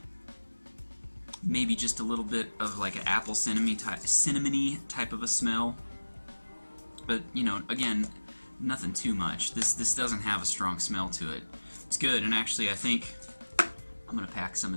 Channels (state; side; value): inverted; both; correlation -1.00